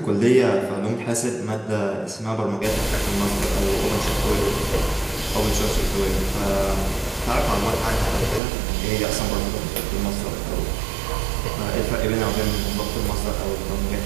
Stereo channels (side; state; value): left; drops out; at 8.4 s